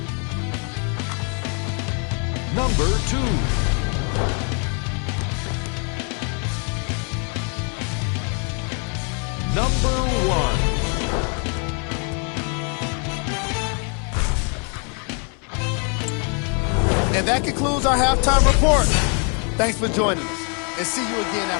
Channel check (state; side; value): quieter; right; 38.9 dB